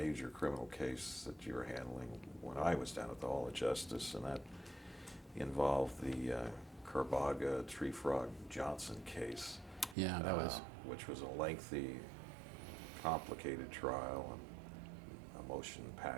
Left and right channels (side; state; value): left; drops out; at 10.0 s